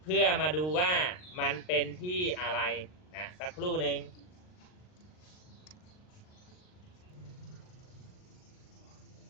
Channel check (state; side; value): late; right; 39 ms